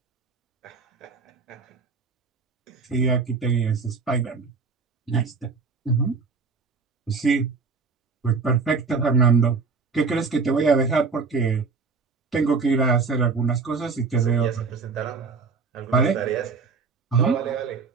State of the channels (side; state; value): left; quieter; 4.7 dB